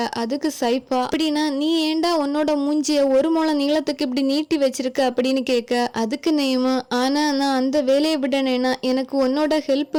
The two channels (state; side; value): identical; both; correlation 1.00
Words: அதுக்கு சைஃபா, அப்படின்னா நீ ஏண்டா உன்னோட மூஞ்சிய ஒரு முழம் நீளத்துக்கு இப்படி நீட்டி வச்சிருக்க அப்படின்னு கேட்க, அதுக்கு நேமு, ஆனா நான் அந்த வேலையை விடனேனா எனக்கு உன்னோட ஹெல்ப்